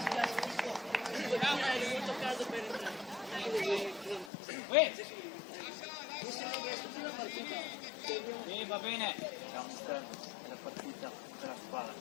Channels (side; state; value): right; drops out; at 4.3 s